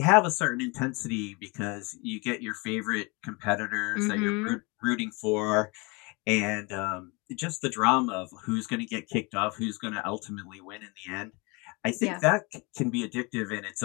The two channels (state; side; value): quieter; right; 28.2 dB